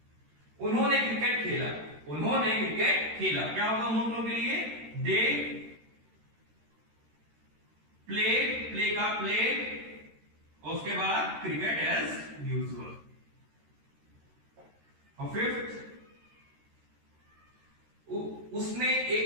उन्होंने क्रिकेट खेला, उन्होंने क्रिकेट खेला, क्या होगा उन लोगों के लिए? दे प्लेड, प्ले का प्लेड, और उसके बाद क्रिकेट एज यूजुअल। और फिफ्थ, उसने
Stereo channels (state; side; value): late; left; 13 ms